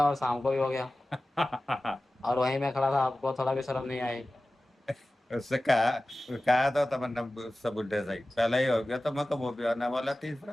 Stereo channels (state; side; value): normal; both; correlation 0.96